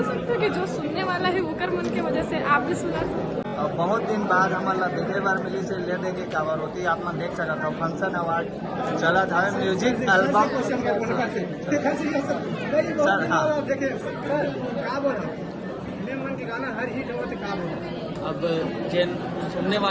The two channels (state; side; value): identical; both; correlation 1.00